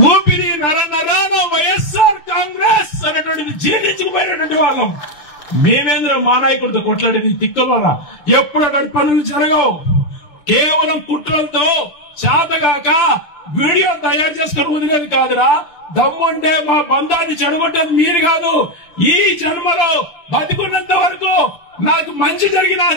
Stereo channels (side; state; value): right; late; 6.8 ms